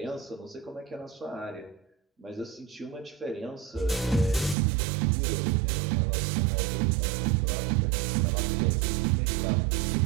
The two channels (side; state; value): left; drops out; at 4.5 s